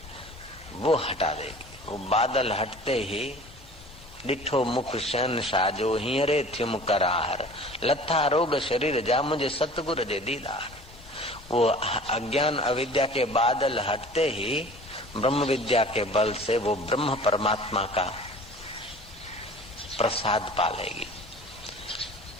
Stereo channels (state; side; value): normal; both; correlation 0.44